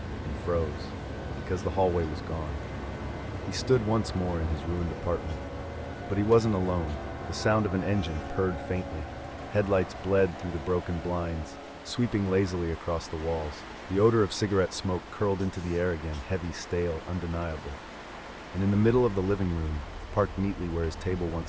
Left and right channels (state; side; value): identical; both; correlation 1.00